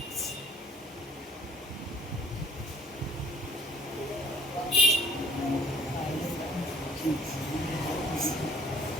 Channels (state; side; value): normal; both; correlation 0.57